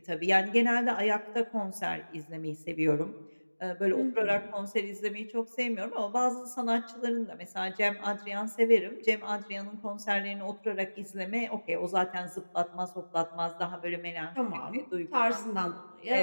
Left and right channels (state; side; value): inverted; both; correlation -1.00